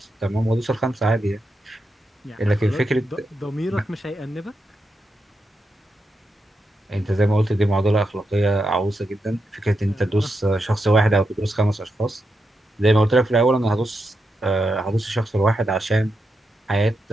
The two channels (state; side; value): normal; both; correlation 0.85